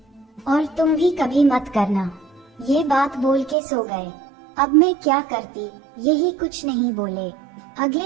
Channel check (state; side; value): drops out; left; at 3.6 s